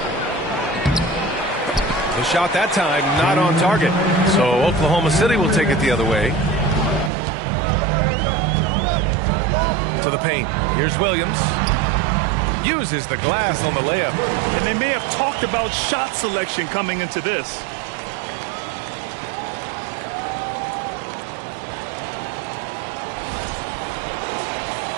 The shot that time not on target. So Oklahoma City will take it the other way. To the paint. Here's Williams. Uses the glass on the layup. And they may have talked about shot selection coming into this.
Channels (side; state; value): left; drops out; at 7.1 s